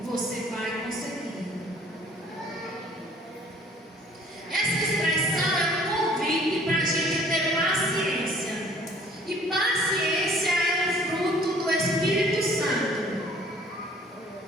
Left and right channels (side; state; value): both; normal; correlation 0.54